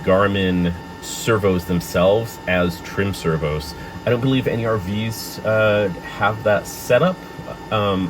servos themselves as trim servos. I don't believe any RVs have that setup. In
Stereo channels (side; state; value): both; identical; correlation 1.00